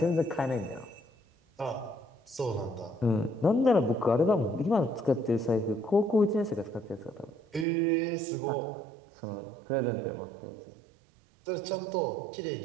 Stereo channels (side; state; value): left; drops out; at 7.7 s